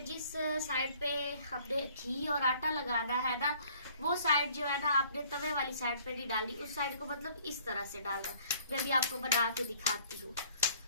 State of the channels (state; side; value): inverted; both; correlation -0.57